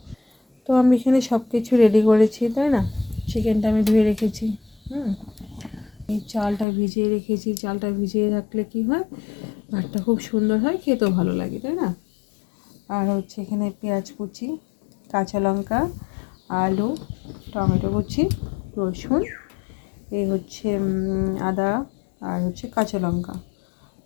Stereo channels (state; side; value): drops out; right; at 6.7 s